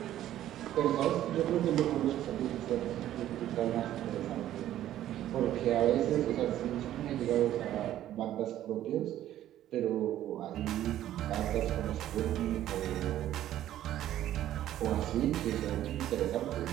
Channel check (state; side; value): quieter; left; 12.6 dB